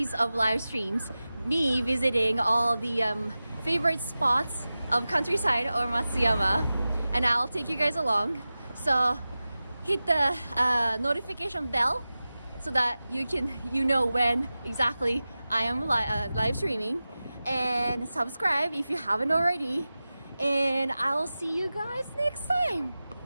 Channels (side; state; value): both; inverted; correlation -0.96